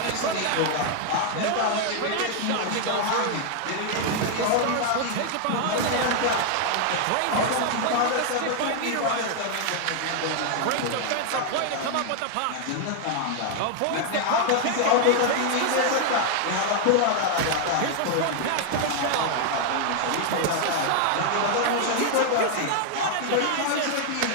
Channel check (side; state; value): both; different; correlation 0.00